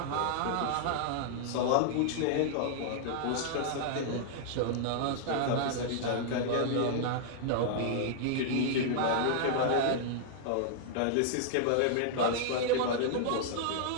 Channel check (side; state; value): both; different; correlation -0.01